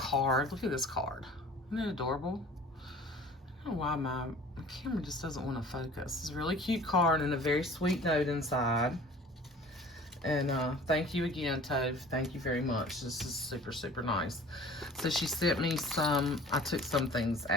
Look at this card. Isn't it adorable? I don't know why my camera just doesn't want to focus. It's a really cute card and a very sweet note inside. And thank you again, Tove. Thank you very much. This is super, super nice. So she sent me some, I took some things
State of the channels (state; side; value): normal; both; correlation 0.46